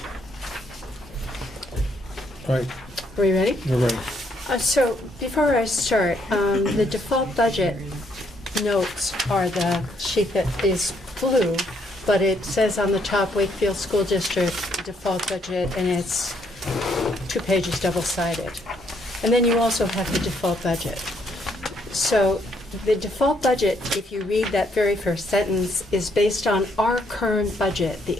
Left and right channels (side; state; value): both; normal; correlation 0.71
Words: All right, Are you ready? we're ready. So before I start, the default budget notes are the sheet that is blue, but it says on the top Wakefield School District default budget, and it's 2 pages double-sided. And then you also have the default budget. So the default budget, if you read that very first sentence, is based on our current budget, the